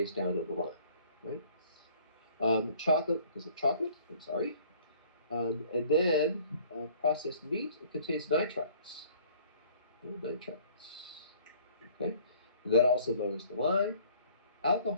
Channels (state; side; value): inverted; both; correlation -0.54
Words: down on the line, right? Chocolate, because of chocolate, I'm sorry. And then processed meat, it contains nitrites. Nitrites. Okay? And that also lowers the line.